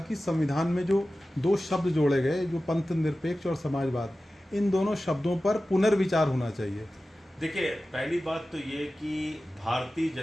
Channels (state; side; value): normal; both; correlation 0.95